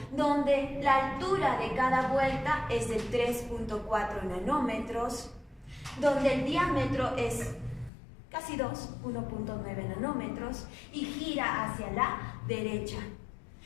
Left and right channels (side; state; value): right; drops out; at 7.9 s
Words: donde la altura de cada vuelta es de 3,4 nanómetros, donde el diámetro es casi 2, 1,9 nanómetros, y gira hacia la derecha.